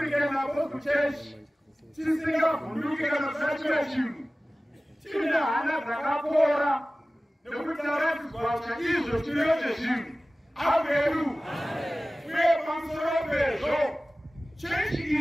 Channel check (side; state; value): both; normal; correlation 0.97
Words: Apostle Church tisingavhunduke kana kusachira chinhu tine hana dzakapora nekuti taratidzwa chaizvo chiriyo chezvinhu. Amen. Uye pamusoro pezvo chechi